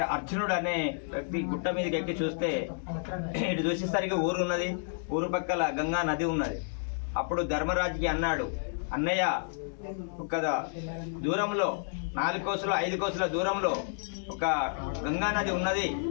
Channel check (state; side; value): silent; right; digital silence